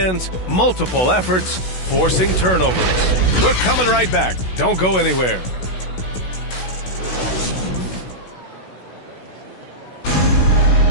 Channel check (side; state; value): right; late; 16 ms